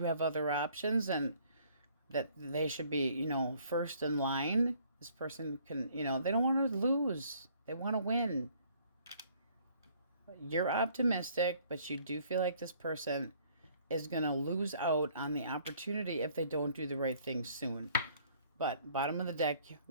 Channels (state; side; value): inverted; both; correlation -0.60